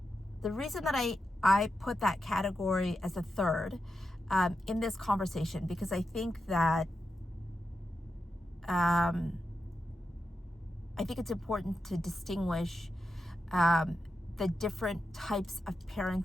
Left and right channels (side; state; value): both; normal; correlation 0.88